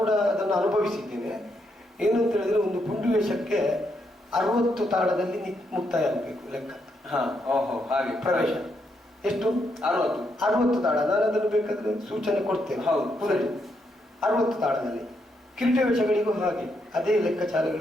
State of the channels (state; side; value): normal; both; correlation 0.78